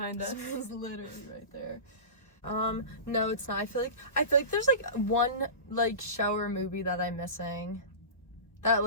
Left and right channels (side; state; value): right; late; 1.1 ms